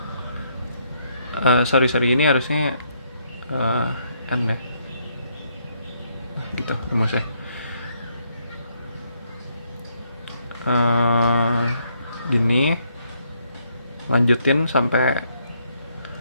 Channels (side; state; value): both; inverted; correlation -0.72